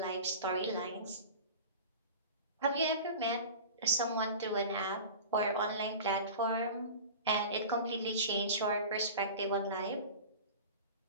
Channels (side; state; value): both; inverted; correlation -0.34